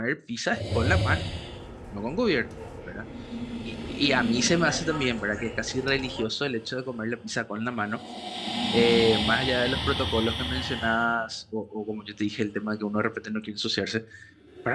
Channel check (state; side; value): identical; both; correlation 1.00